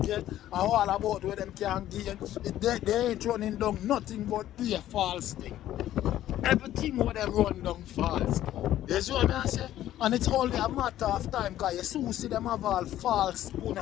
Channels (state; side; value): quieter; right; 12.9 dB